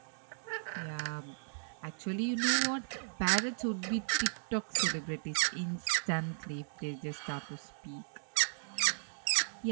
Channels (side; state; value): left; silent; digital silence